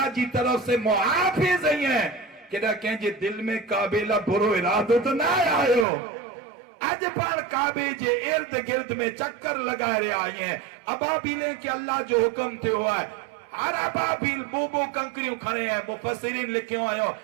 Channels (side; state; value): left; drops out; at 5.9 s